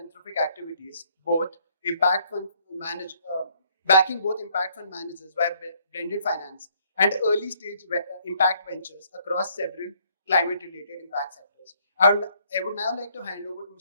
activities, backing both impact fund managers by blended finance and early stage impact ventures across several climate related impact sectors. I would now like to hand over to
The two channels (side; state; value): both; inverted; correlation -0.66